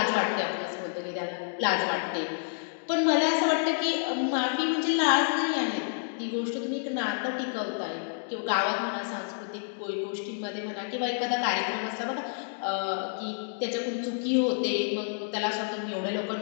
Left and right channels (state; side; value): silent; right; digital silence